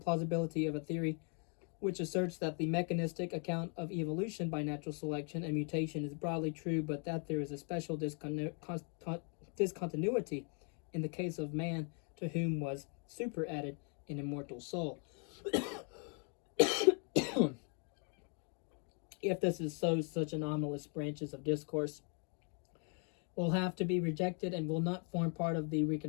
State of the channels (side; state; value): right; quieter; 39.6 dB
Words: of a theory which asserts that the mechanistic account of evolution by natural selection and mutation is broadly true, but that there is a special discontinuity in the case of man, to whom was superadded an immortal soul. If this is so, such anomalous branches of discourse will have to be rejected and will not form part of the